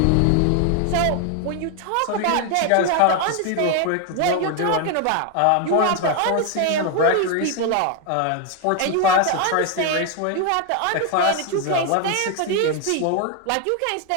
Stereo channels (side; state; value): both; different; correlation 0.01